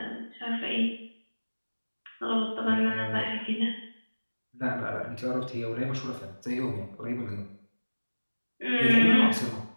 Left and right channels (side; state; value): both; inverted; correlation -1.00